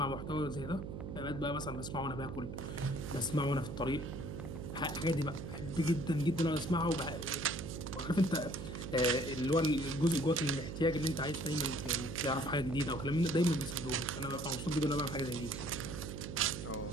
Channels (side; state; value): right; noise; hum, 7 dB below the sound